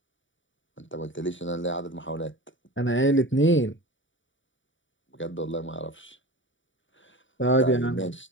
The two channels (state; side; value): late; right; 0.56 ms